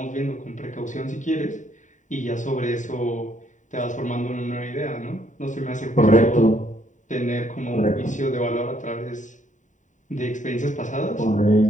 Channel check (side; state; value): right; late; 0.36 ms